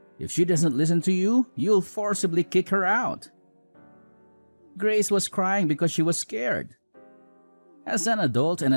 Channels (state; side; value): inverted; both; correlation -1.00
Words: If she doesn't listen to you, you'll forcibly kick her out. Grace was crying because she was scared. As an adult and